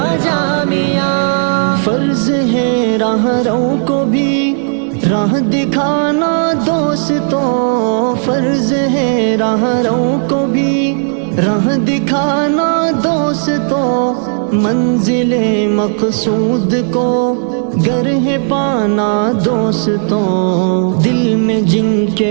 جامعہ، فرض ہے راہ رو کو بھی راہ دکھانا دوستوں، فرض ہے راہ رو کو بھی راہ دکھانا دوستوں، منزل مقصود کو گر ہے پانا دوستوں، دل میں جن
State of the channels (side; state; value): left; silent; digital silence